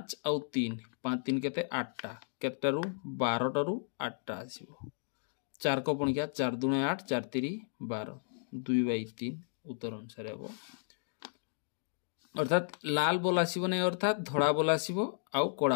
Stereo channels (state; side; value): silent; right; digital silence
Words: और 3 5 3 केते 8टा केतटारू 12टारू 8टा आसीबो 4 को पुण किया 4 2 8 4 3 12 2/3 उत्तर अनुसार हेबो अर्थात लाल बॉल आसीबो नै अर्थात धड़ा बॉल आसीबो आ